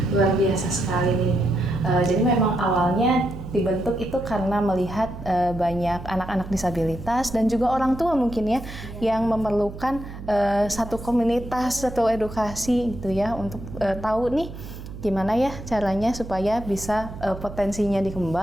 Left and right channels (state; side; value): noise; right; hum, 12 dB below the sound